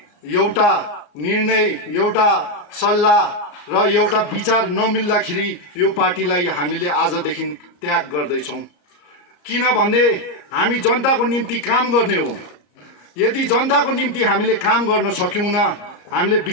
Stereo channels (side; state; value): right; late; 34 ms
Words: एउटा निर्णय, एउटा सल्लाह र एउटा विचार नमिल्दाखेरि यो पार्टीलाई हामीले आजदेखि त्याग गर्दैछौँ। किनभने हामी जनताको निम्ति काम गर्ने हो। यदि जनताको निम्ति हामीले काम गर्न सक्यौँ, हामीले